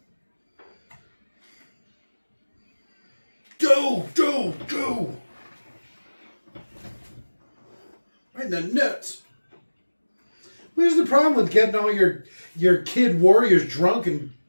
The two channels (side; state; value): both; inverted; correlation -1.00